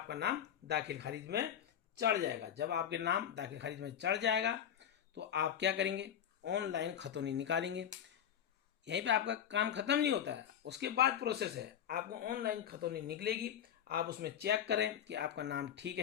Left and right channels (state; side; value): quieter; right; 9.4 dB